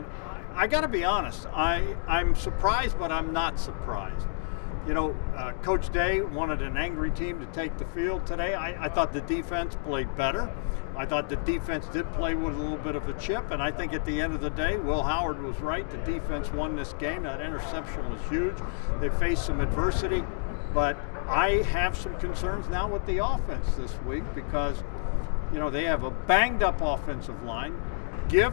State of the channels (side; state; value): right; silent; digital silence